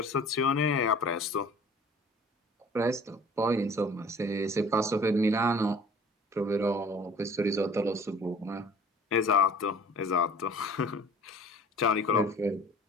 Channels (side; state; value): both; normal; correlation 0.48